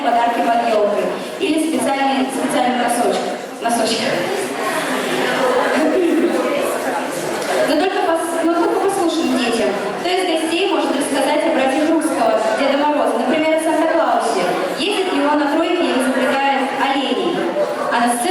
подарки под елкой или специальным носочках. Но только послушным детям. Кто из гостей может рассказать о братьях Русского, Деда Мороза, например, о Санта-Клаусе? Ездит ли он на тройке и запрягает оленей? А на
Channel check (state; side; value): identical; both; correlation 1.00